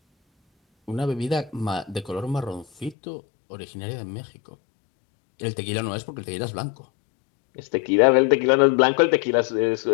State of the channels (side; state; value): right; drops out; at 3.0 s